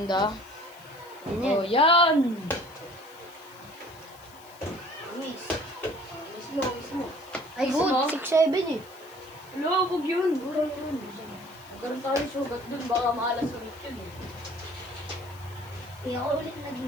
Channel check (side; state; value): left; noise; hiss, 24 dB below the sound